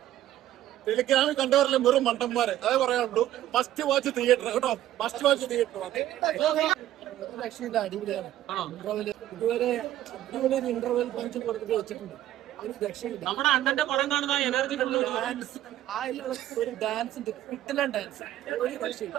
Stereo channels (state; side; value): quieter; left; 13.1 dB